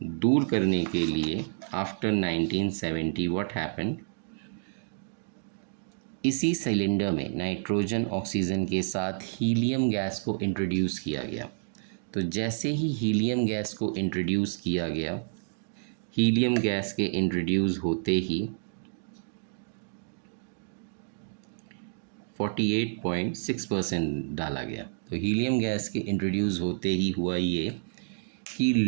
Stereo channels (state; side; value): silent; left; digital silence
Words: दूर करने के लिए आफ्टर 1970 व्हाट हैपेंड, इसी सिलेंडर में नाइट्रोजन ऑक्सीजन के साथ हीलियम गैस को इंट्रोड्यूस किया गया। तो जैसे ही हीलियम गैस को इंट्रोड्यूस किया गया, हीलियम गैस के इंट्रोड्यूस होते ही 48.6% डाला गया। तो हीलियम गैस के इंट्रोड्यूस होते ही हुआ ये कि